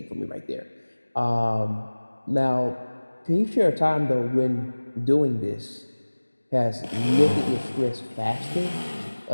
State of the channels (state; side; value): inverted; both; correlation -1.00